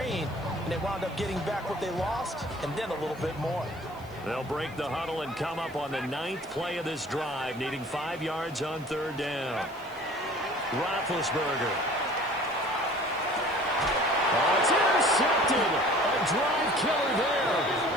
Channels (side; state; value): right; noise; hiss, 26 dB below the sound